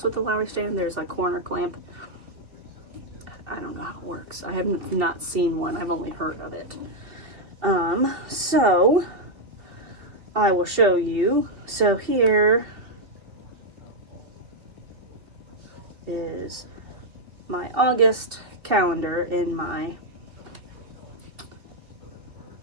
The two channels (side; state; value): left; late; 2.7 ms